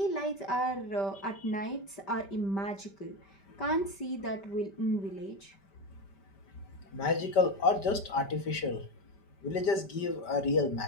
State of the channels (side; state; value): right; late; 5.1 ms